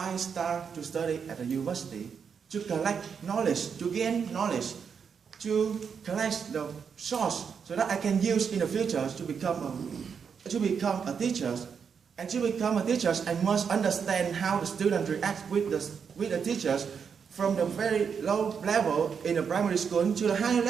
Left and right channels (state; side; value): quieter; left; 6.6 dB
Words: I start to study at the university, to collect knowledge, to gain knowledge, to collect the source so that I can use in the future to become a teacher. And to become a teacher, I must understand how the students react with the teachers from the very low level in the primary school to the higher